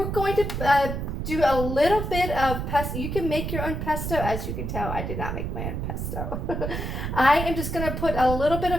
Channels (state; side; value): noise; right; rumble, 3 dB below the sound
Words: going to do a little bit of pesto. You can make your own pesto. As you can tell, I did not make my own pesto. I am just going to put a little bit